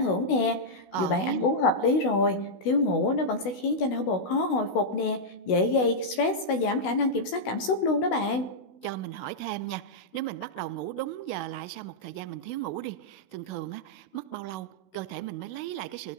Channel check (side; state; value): right; late; 16 ms